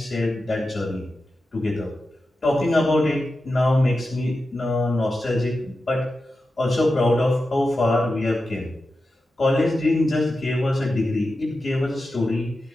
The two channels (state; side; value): normal; both; correlation 0.91